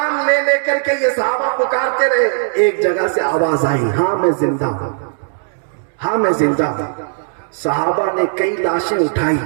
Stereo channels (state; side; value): silent; left; 68 dB below the other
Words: لے لے کر کے یہ صحابہ پکارتے رہے۔ ایک جگہ سے آواز آئی، ہاں میں زندہ ہوں، ہاں میں زندہ ہوں۔ صحابہ نے کئی لاشیں اٹھائی